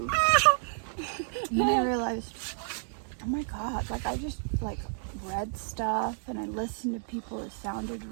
and then I realized, oh my god, like I just like read stuff and I listened to people that sounded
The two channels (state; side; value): silent; left; 57 dB below the other